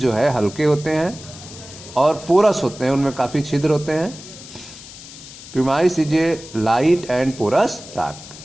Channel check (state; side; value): noise; left; hiss, 16 dB below the sound